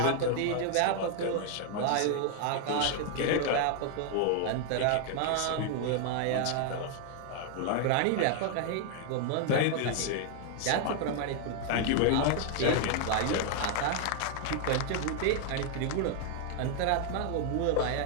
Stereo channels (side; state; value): both; different; correlation 0.00